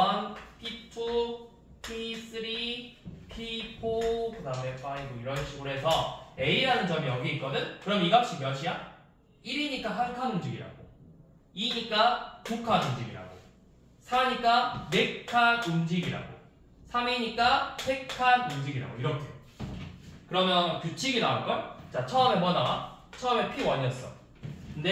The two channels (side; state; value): both; identical; correlation 1.00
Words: P2, P3, P4 그 다음에 5 이런 식으로 해서 A라는 점이 여기 있거든? 그럼 이 값이 몇이야? 1이니까 한 칸 움직이라고 2니까 두 칸 움직이라고 4니까 4칸 움직이라고 3이니까 3칸 움직이라고 이렇게. 그러면 규칙이 나올걸? 자 처음에 뭐 나와? 처음에 P1이었어.